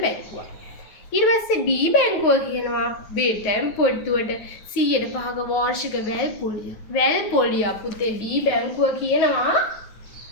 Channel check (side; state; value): right; late; 9.4 ms